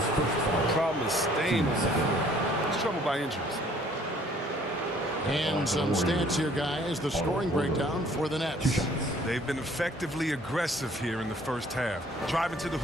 problem is staying on the floor. He's troubled by injuries. And some stats here, guys. The scoring breakdown for the Nets. They've been effectively aggressive here in the first half, driving to the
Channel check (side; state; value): both; normal; correlation 0.58